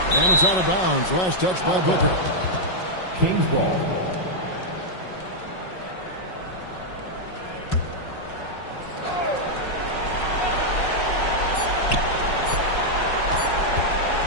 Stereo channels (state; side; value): late; right; 5.4 ms